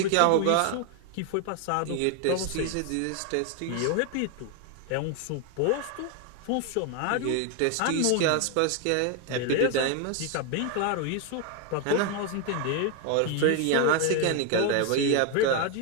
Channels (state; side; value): different; both; correlation 0.01